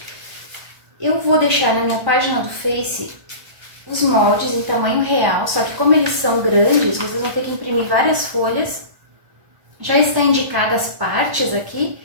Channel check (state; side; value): late; left; 1.5 ms